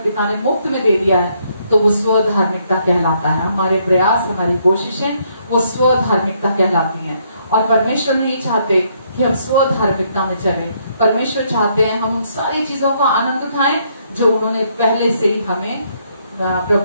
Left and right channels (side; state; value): both; inverted; correlation -0.71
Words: पिता ने मुफ्त में दे दिया है, तो वो स्वधार्मिकता कहलाता है। हमारे प्रयास, हमारी कोशिशें वो स्वधार्मिकता कहलाती हैं। और परमेश्वर नहीं चाहते कि हम स्वधार्मिकता में चलें। परमेश्वर चाहते हैं हम उन सारी चीजों का आनंद उठाएं जो उन्होंने पहले से ही हमें